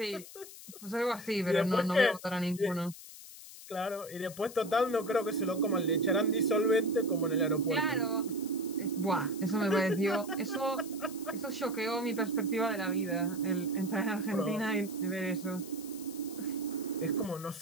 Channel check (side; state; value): left; noise; hiss, 15 dB below the sound